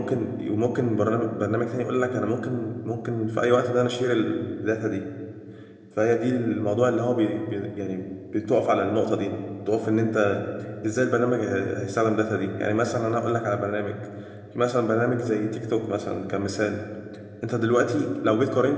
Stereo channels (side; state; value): both; identical; correlation 1.00